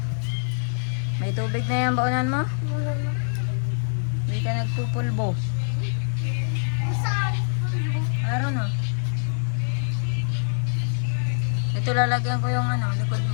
May tubig na yan, baunan mo? Hindi ka nagpupulbo. Meron o. Ito lalagyan ko yung likod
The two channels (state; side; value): silent; right; digital silence